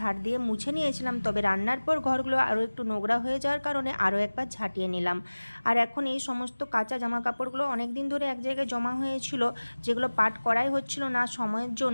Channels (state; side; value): inverted; both; correlation -1.00